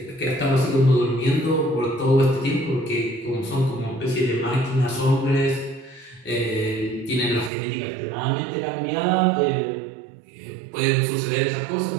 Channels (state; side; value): drops out; left; at 7.5 s